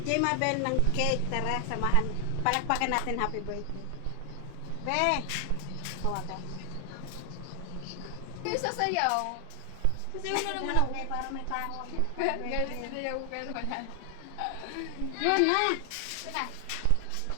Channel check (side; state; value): both; different; correlation 0.00